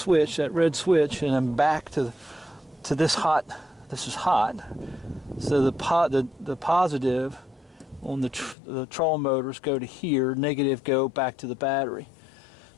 that red switch, and then back to this hot. This is hot. So the positive on the trolling motors go to here, negative go back to the battery.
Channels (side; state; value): right; drops out; at 8.6 s